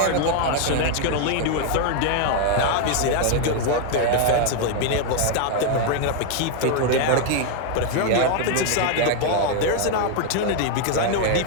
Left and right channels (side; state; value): both; different; correlation 0.00